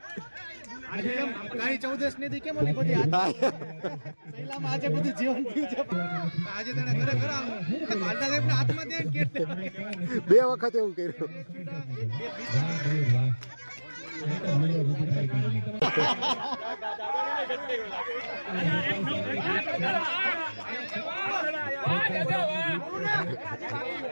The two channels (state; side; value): inverted; both; correlation -1.00